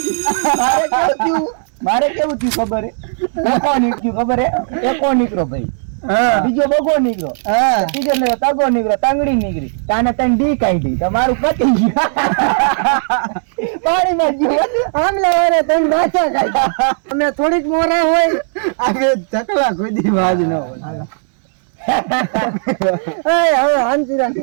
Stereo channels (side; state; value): left; silent; digital silence